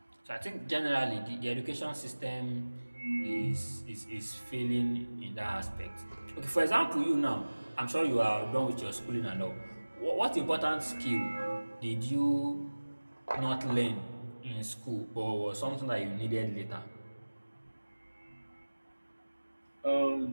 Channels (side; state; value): both; inverted; correlation -1.00